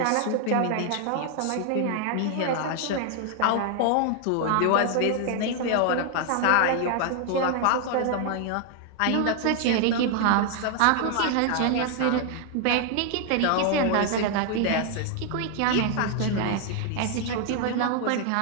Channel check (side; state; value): both; different; correlation 0.00